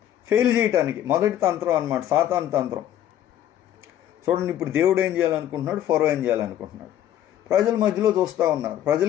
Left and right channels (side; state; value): right; quieter; 11.5 dB